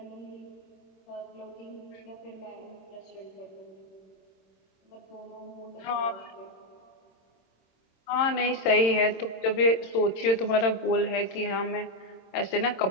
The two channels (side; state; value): right; late; 26 ms